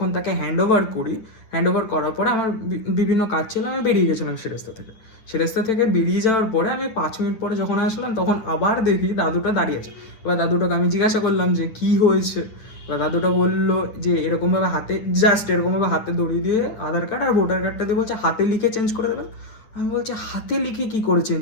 তাকে হ্যান্ড ওভার করি, হ্যান্ড ওভার করার পরে আমার বিভিন্ন কাজ ছিল, আমি বেরিয়ে গেছিলাম সেরেস্তা থেকে। সেরেস্তা থেকে বেরিয়ে যাওয়ার পরে আমি 5 মিনিট পরে যখন আসলাম, তখন আবার দেখি দাদুটা দাঁড়িয়ে আছে। এবার দাদুটাকে আমি জিজ্ঞাসা করলাম যে, "কী হয়েছে?" এবার দাদুটা বললো যে, এরকমভাবে হাতে, জাস্ট এরকমভাবে হাতে ধরিয়ে দিয়ে আধার কার্ড আর ভোটার কার্ডটা দিয়ে বলছে হাতে লিখে চেঞ্জ করে দেবেন। আমি বলছি, হাতে লিখে কি করে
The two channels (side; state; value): right; late; 9.3 ms